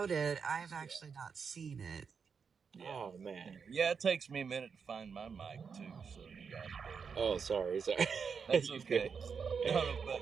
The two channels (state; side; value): quieter; left; 6.0 dB